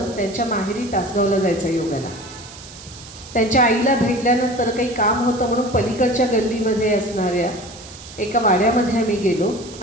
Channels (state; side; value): noise; right; hiss, 17 dB below the sound